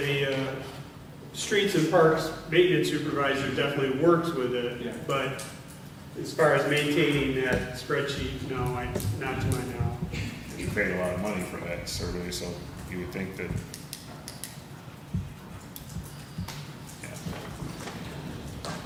streets and parks maintenance supervisor definitely works with it, Yeah. but as far as maintaining that spreadsheet, no, not to my knowledge. You paid a lot of money for that survey, so you would think that.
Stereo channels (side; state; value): both; identical; correlation 1.00